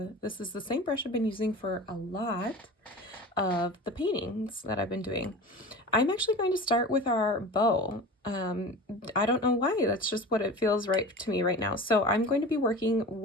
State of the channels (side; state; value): both; normal; correlation 0.35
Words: This is the same brush I've been using for a lot of the paintings that I've been doing. I'm actually going to start with our bow. I don't know why, that's just what it feels right to me right now. So I'm going to be working